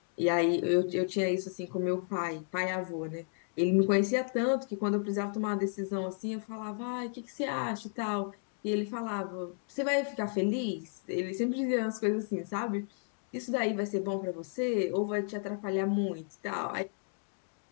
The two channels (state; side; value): silent; right; 56 dB below the other